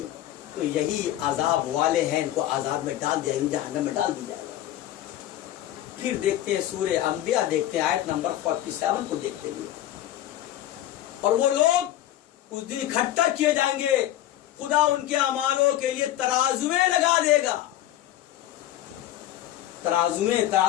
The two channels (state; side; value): quieter; right; 13.4 dB